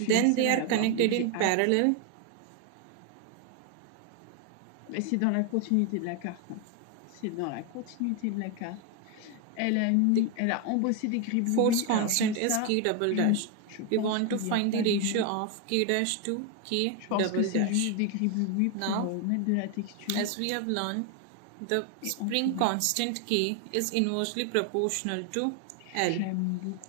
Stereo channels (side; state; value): both; different; correlation 0.01